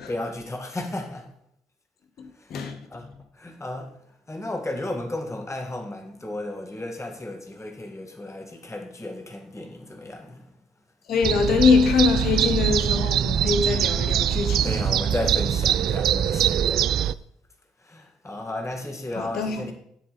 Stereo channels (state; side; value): normal; both; correlation 0.64